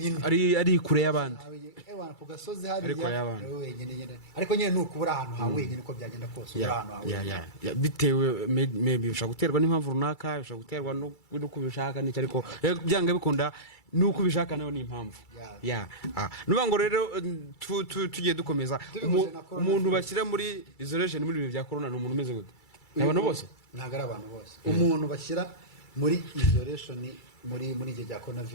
ari kure y'abandi ku gasozi hariya wenyine ariko nyine nuko ubura ahantu ha wenyine uko byagenda kose ubura ahantu ha wenyine bitewe maybe bishobora guterwa n'impamvu runaka bishobora guterwa n'uko ubishaka n'icyo ariko byanga bikunda nuko ubishaka nayo ni impamvu nuvuga ngo rero tugiye dukomeza umuntu bashyira muri isolation muri ibi bya corona ni umuntu umeze gute abantu bose ntabwo ari abantu bose umuntu bashyira muri isolation muri igihe cya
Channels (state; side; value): late; right; 2.3 ms